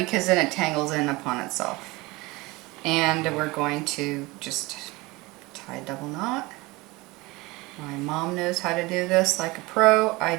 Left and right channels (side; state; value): left; quieter; 22.5 dB